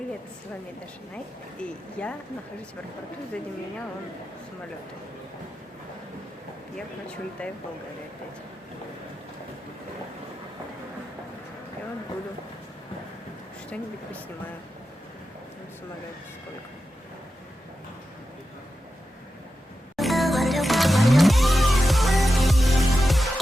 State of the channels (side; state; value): both; normal; correlation 0.91